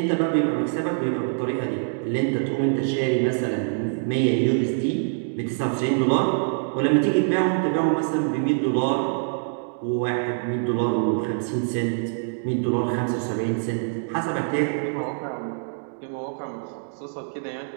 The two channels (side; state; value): left; silent; digital silence